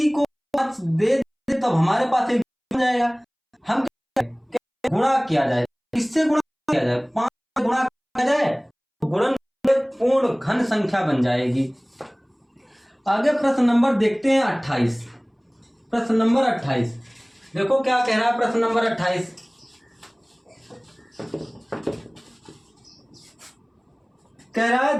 को 5 दे तब हमारे पास एक बन जाएगा। हम गुणा किया जाए, इससे गुणा किया जाए, 5 से गुणा किया जाए तो गुणन पूर्ण घन संख्या बन जाएगी। आगे प्रश्न नंबर देखते हैं 28। प्रश्न नंबर 28 देखो क्या कह रहा है। प्रश्न नंबर 28 कह रहा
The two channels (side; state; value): both; identical; correlation 1.00